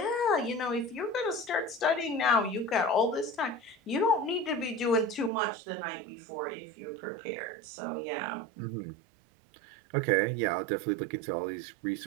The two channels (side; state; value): left; drops out; at 5.3 s